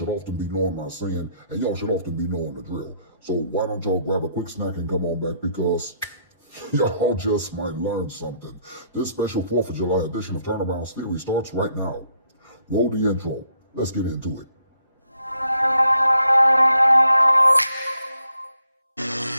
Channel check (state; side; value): inverted; both; correlation -0.71